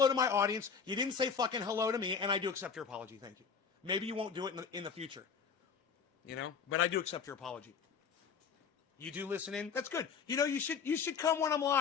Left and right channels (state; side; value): quieter; right; 6.2 dB